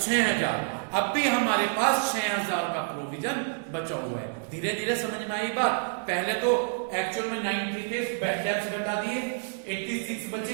अब भी हमारे पास 6,000 का प्रोविजन बचा हुआ है। धीरे धीरे समझ में आई बात? पहले तो एक्चुअल में 90 थे, बैड डेट्स घटा दिए, 86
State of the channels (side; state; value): left; silent; digital silence